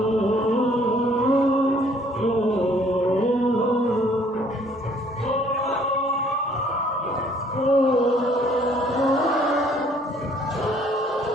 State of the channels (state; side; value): normal; both; correlation 0.60